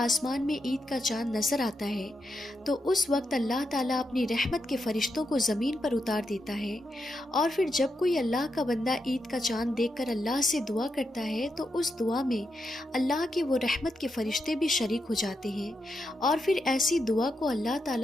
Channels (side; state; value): both; normal; correlation 0.84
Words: میں عید کا چاند نظر آتا ہے تو اس وقت اللہ تعالیٰ اپنی رحمت کے فرشتوں کو زمین پر اتار دیتا ہے، اور پھر جب کوئی اللہ کا بندہ عید کا چاند دیکھ کر اللہ سے دعا کرتا ہے تو اس دعا میں اللہ کے وہ رحمت کے فرشتے بھی شریک ہو جاتے ہیں، اور پھر ایسی دعا کو اللہ